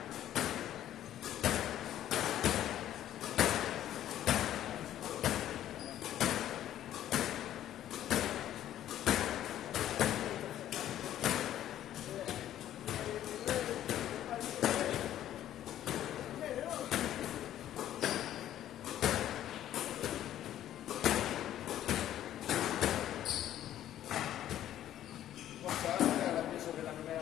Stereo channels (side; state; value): right; quieter; 12.0 dB